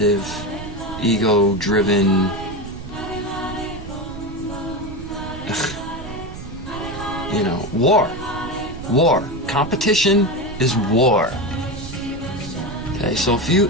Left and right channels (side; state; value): right; noise; rumble, 11 dB below the sound